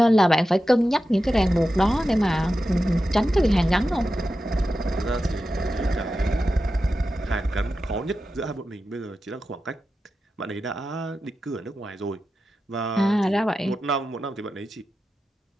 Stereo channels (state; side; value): normal; both; correlation 0.91